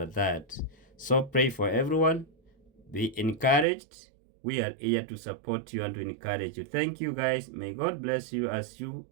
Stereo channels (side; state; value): left; drops out; at 3.7 s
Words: that. So pray for everyone. Be encouraged. We are here to support you and to encourage you. Thank you guys. May God bless you as you